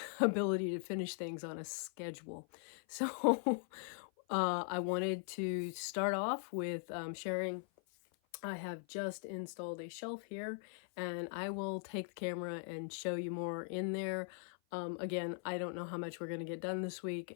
ability to finish things on a schedule. So I wanted to start off with sharing. I have just installed a shelf here, and I will take the camera and show you more in there. Again, I don't know how much we're going to get done this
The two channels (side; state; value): right; silent; 51 dB below the other